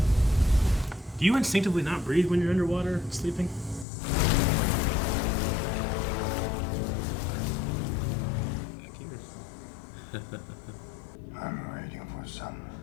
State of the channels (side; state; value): right; drops out; at 3.9 s